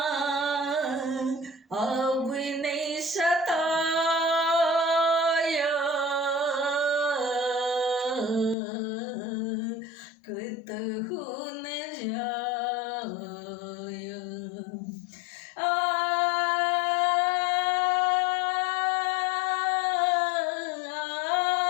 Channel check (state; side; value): drops out; right; at 8.6 s